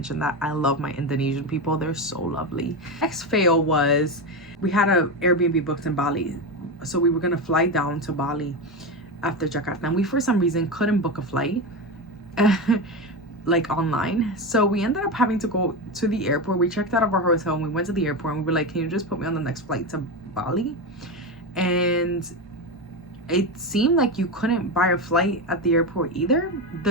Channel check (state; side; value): normal; both; correlation 0.17